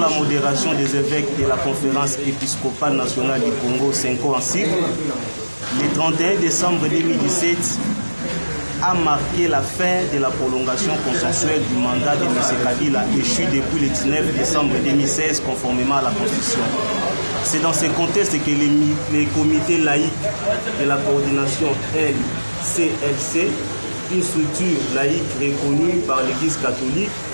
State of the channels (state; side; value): inverted; both; correlation -1.00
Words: modération des évêques de la Conférence épiscopale nationale du Congo, 5 ans en sigle, le 31 décembre 2017 a marqué la fin de la prolongation consensuelle du mandat de M. Kabila échu depuis le 19 décembre 2016 conformément à la Constitution. C'est dans ce contexte que les comités laïcs de la coordination LCLC, une structure laïque reconnue par l'Église catholique,